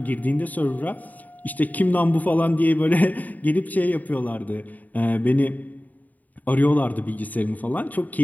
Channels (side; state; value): right; late; 0.078 ms